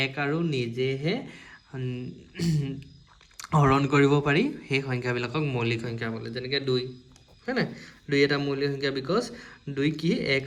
এক আৰু নিজেহে হৰণ কৰিব পাৰি সেই সংখ্যাবিলাকক মৌলিক সংখ্যা বোলে যেনেকৈ 2 হয় না 2 এটা মৌলিক সংখ্যা বিকজ 2 কি এক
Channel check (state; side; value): identical; both; correlation 1.00